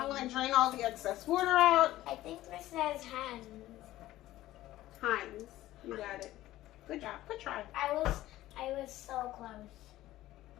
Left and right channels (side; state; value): right; quieter; 15.3 dB